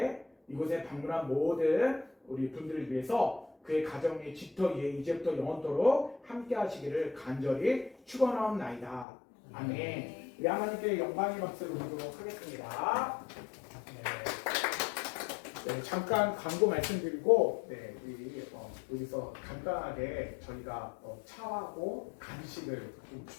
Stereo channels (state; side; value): drops out; right; at 9.1 s